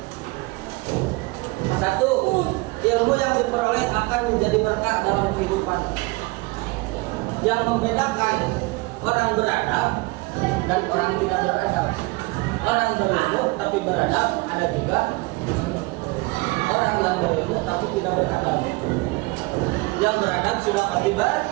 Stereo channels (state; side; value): quieter; left; 24.7 dB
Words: Satu, ilmu yang diperoleh akan menjadi berkah dalam kehidupan. Yang membedakan orang beradab dan orang tidak beradab. Orang berilmu tapi beradab, ada juga orang yang berilmu tapi tidak beradab. Yang beradab sudah pasti